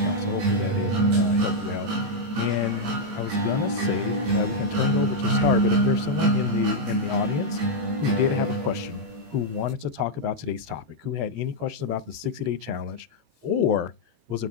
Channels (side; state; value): left; late; 18 ms